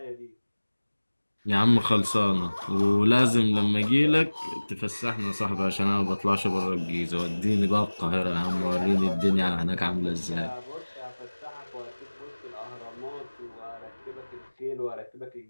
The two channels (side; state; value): both; inverted; correlation -1.00